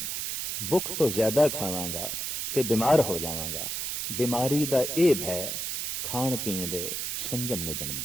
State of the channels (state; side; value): noise; right; hiss, 2 dB below the sound